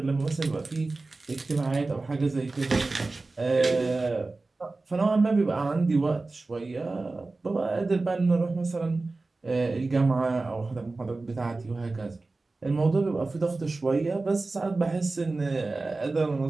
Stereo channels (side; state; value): left; quieter; 3.4 dB